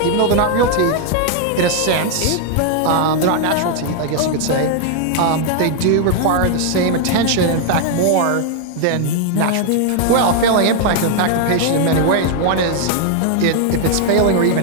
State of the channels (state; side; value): different; both; correlation 0.00